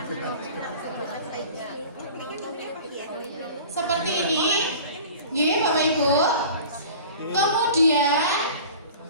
Seperti ini. Nggih, Bapak Ibu. Kemudian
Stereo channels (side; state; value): both; inverted; correlation -0.41